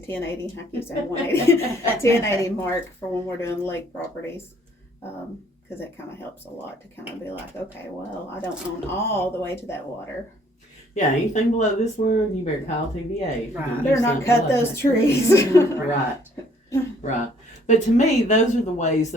I keep saying 180. 1080 mark for when we're doing lake properties. Because it kind of helps a lot to kind of be like, okay, well, I don't own all the way to that water. Yeah, anything below this line, you better call TVA. Right. Better not cut those trees. Right. Right. But to me, those are the ways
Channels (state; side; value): normal; both; correlation 0.61